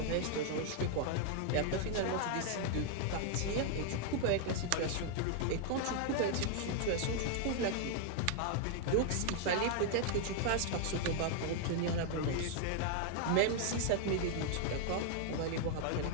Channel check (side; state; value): both; different; correlation 0.00